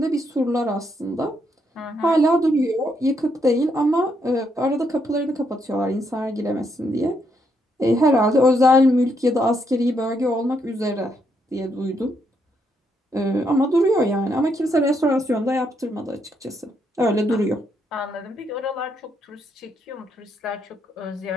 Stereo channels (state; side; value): normal; both; correlation 0.76